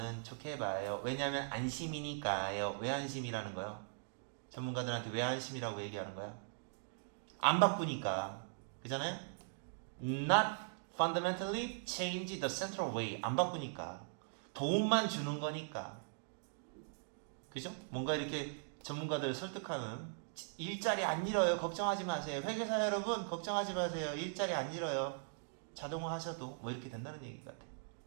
좋게 봐요. 왜냐하면 안심이니까요. 왜 안심이라는 거요? 전문가들한테 왜 안심이라고 얘기하는 거야? 안 바꾸니까. 그잖아요? Not fundamentally change the central way. 안 바꾸니까. 도움만 주는 거니까. 그죠? 뭔가 이렇게 전문가들 설득하는 일자리 안 잃어요. 걱정하지 마세요. 회계사 여러분 걱정하지 마세요. 일자리 안 잃어요. 자동화 하셔도 뭐 이렇게 된다는 얘기 같아.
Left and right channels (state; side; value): silent; left; digital silence